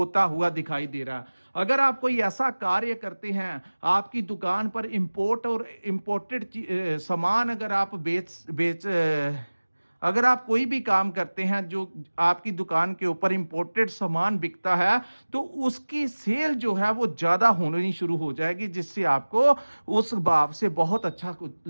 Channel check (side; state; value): both; inverted; correlation -1.00